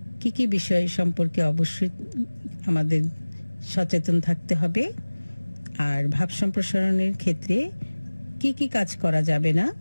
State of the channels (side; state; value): both; inverted; correlation -1.00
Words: কি কি বিষয় সম্পর্কে অবশ্যই আমাদের সচেতন থাকতে হবে, আর ভাব সম্প্রসারণের ক্ষেত্রে কি কি কাজ করা যাবে না